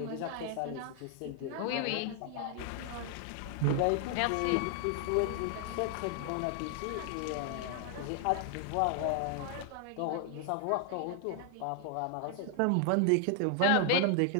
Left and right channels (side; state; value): both; different; correlation 0.00